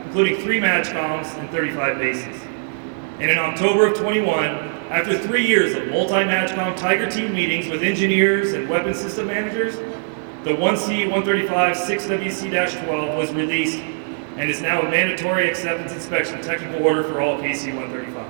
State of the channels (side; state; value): left; silent; digital silence